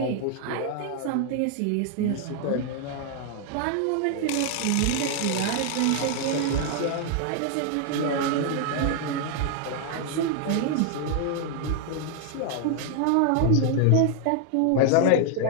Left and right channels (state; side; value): different; both; correlation 0.00